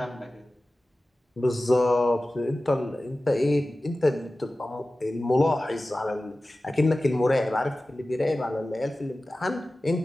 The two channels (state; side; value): normal; both; correlation 0.96